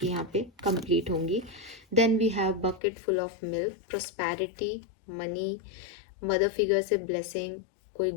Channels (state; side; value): drops out; right; at 2.8 s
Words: यहाँ पे कंप्लीट होंगी। Then we have bucket full of milk, prosperity, money, mother figure से ब्लेसिंग, कोई